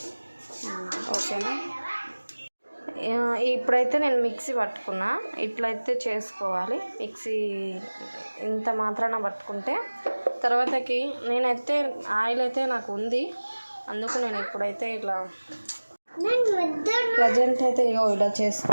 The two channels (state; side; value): inverted; both; correlation -1.00